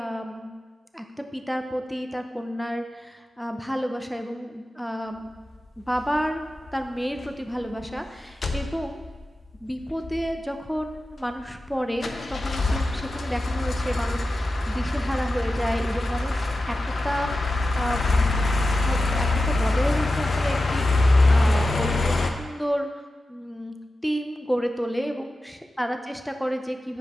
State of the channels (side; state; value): both; normal; correlation 0.93